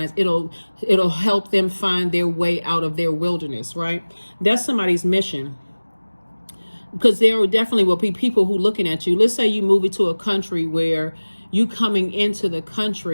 it'll help them find their way out of their wilderness, right? That's somebody's mission. Because there definitely will be people who looking at you. Let's say you move into a country where you coming into the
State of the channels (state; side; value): inverted; both; correlation -1.00